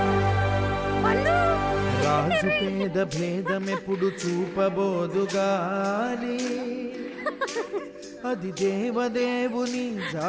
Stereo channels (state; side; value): identical; both; correlation 1.00